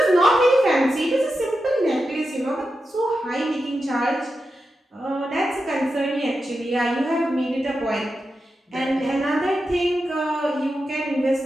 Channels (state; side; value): normal; both; correlation 0.89